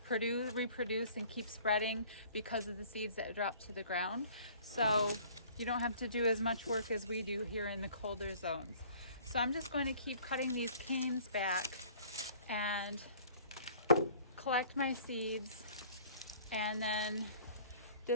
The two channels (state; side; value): inverted; both; correlation -0.52